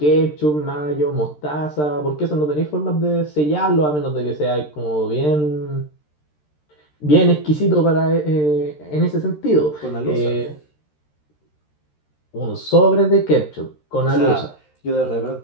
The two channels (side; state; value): right; late; 13 ms